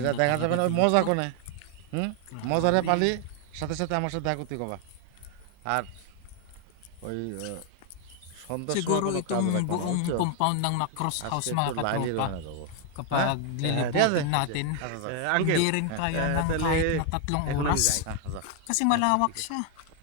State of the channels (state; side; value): different; both; correlation 0.00